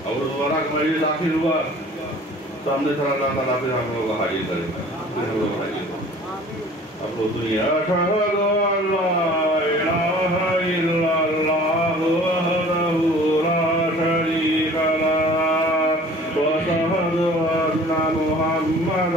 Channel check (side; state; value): both; normal; correlation 0.48